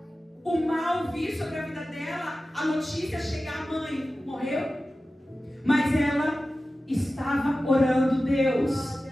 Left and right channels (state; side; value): normal; both; correlation 0.95